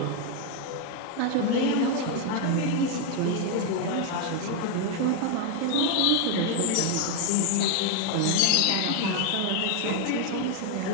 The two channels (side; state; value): both; different; correlation 0.01